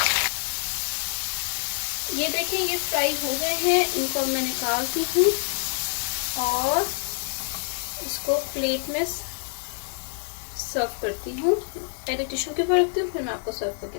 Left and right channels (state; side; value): silent; right; digital silence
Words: ये देखिए, ये फ्राई हो गए हैं, इनको मैं निकालती हूँ और इसको प्लेट में सर्व करती हूँ। पहले टिश्यू के ऊपर रखती हूँ, फिर मैं आपको सर्व